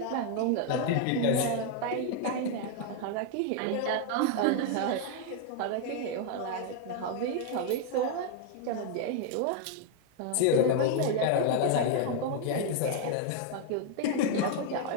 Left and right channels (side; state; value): both; different; correlation 0.01